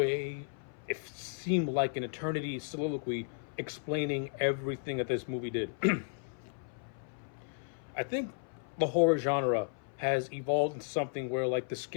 it seemed like an eternity soliloquy explaining everything that this movie did. I think the horror genre has evolved into something where if the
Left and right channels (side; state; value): right; silent; 55 dB below the other